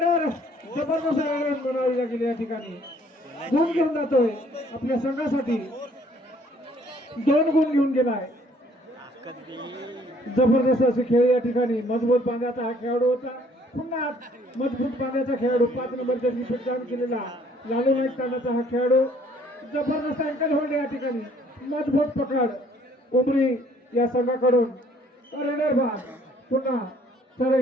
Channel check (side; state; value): both; normal; correlation 0.61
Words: जबरदस्त बनावी लागेल या ठिकाणी. गुण घेऊन जातोय आपल्या संघासाठी 2 गुण घेऊन गेलाय. जबरदस्त असे खेळ या ठिकाणी मजबूत बांधाचा हा खेळाडू होता. पुन्हा मजबूत बांधाचा खेळाडू 5 नंबर जर्सी परिधान केलेला लालू नाईक तांडाचा हा खेळाडू जबरदस्त अँकल होल्ड या ठिकाणी मजबूत पकड उमरी या संघाकडून रेडर बाद. पुन्हा चढाई